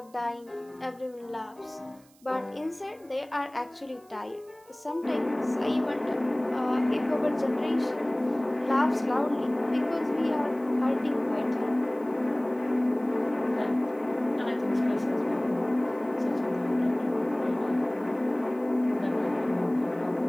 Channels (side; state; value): right; noise; hiss, 29 dB below the sound